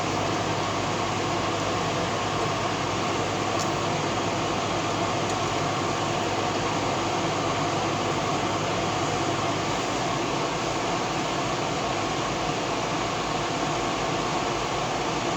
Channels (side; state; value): both; identical; correlation 1.00